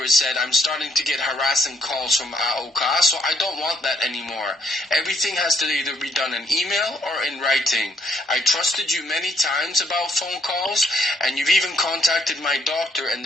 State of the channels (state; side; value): normal; both; correlation 0.71